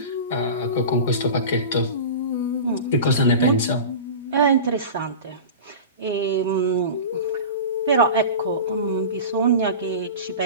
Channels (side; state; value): both; inverted; correlation -0.31